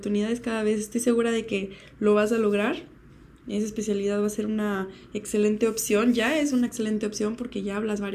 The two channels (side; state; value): both; identical; correlation 1.00